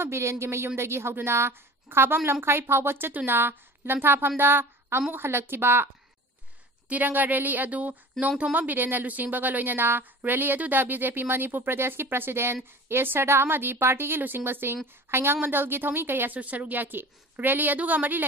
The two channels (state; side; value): normal; both; correlation 0.40